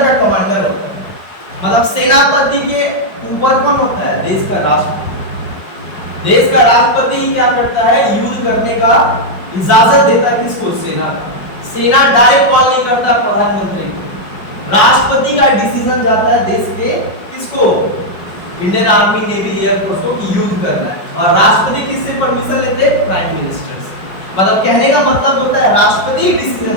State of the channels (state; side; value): late; right; 5.2 ms